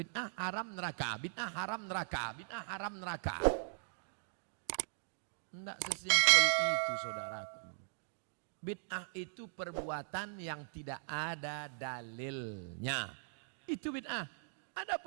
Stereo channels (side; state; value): left; silent; digital silence